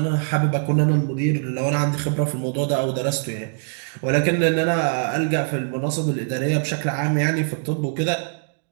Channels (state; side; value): silent; left; digital silence